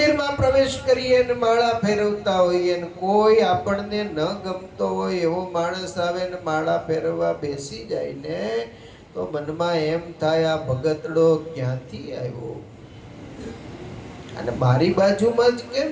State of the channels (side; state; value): both; identical; correlation 1.00